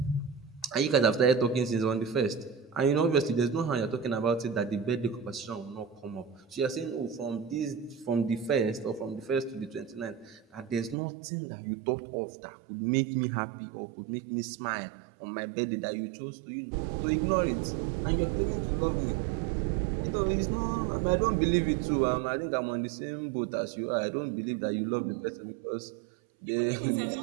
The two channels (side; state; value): left; drops out; at 11.0 s